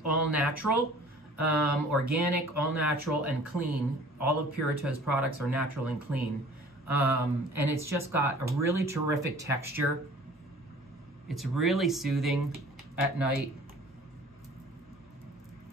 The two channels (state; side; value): normal; both; correlation 0.49